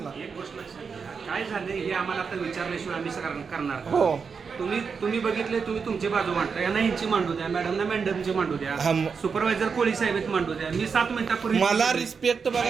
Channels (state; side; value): quieter; left; 5.7 dB